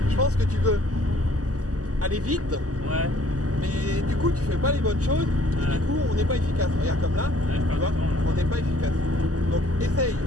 Je pense que tu veux aller vite, Ouais. mais du coup tu fais pas les bonnes choses, et Ouais. du coup on n'est pas efficace. Regarde comme là, Ouais, je tu perds vois, du temps, là. on n'est pas efficace. Donc essaye,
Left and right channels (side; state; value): left; late; 0.67 ms